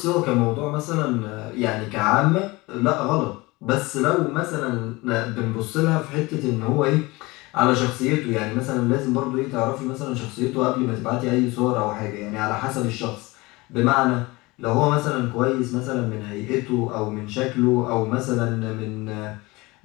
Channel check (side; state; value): right; quieter; 22.7 dB